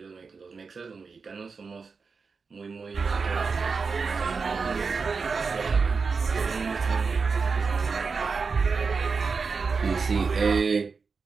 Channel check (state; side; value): quieter; left; 4.9 dB